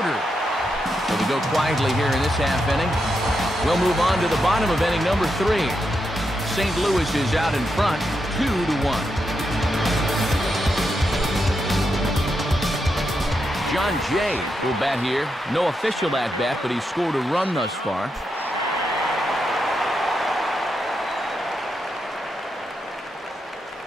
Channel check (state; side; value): normal; both; correlation 0.84